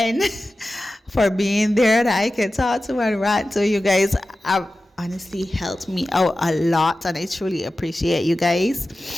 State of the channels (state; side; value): normal; both; correlation 0.94